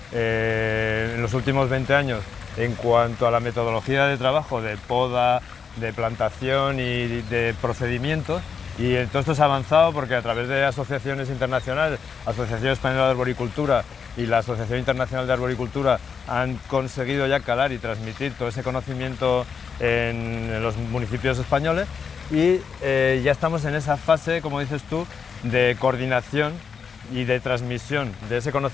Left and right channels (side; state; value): right; quieter; 6.2 dB